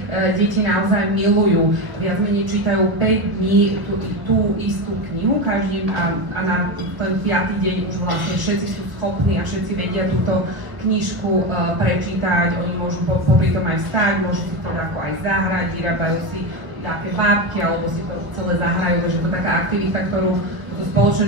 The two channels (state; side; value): late; left; 1.2 ms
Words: deti naozaj milujú. Viac menej čítajú 5 dní tú istú knihu každý a na ten 5. deň už vlastne všetci sú schopní a všetci vedia túto knižku prečítať. Oni môžu popri tom aj vstať, môžu si teda ako aj zahrať, vyrábajú si nejaké bábky alebo si to celé zahrajú, takže to je taká aktivita, ktorú to spoločné